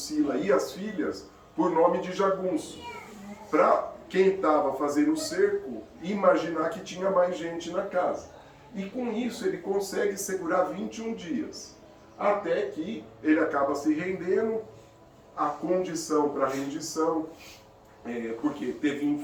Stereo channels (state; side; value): identical; both; correlation 1.00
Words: e as filhas por nome de jagunço, para quem estava fazendo o cerco imaginar que tinha mais gente na casa. E com isso ele consegue segurar 21 dias, até que ele acaba se rendendo. A condição para rendição, porque teve